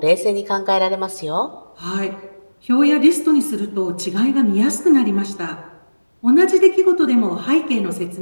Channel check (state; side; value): inverted; both; correlation -1.00